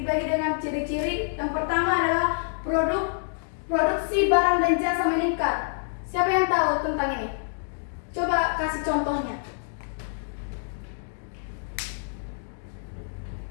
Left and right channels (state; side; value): silent; right; digital silence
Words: dengan ciri-ciri. Yang pertama adalah produksi barang dan jasa meningkat. Siapa yang tahu tentang ini? Coba kasih contohnya.